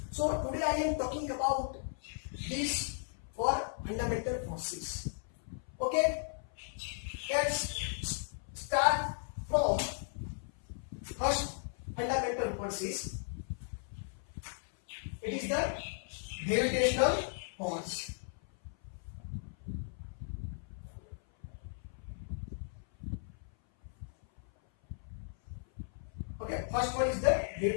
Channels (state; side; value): silent; right; 54 dB below the other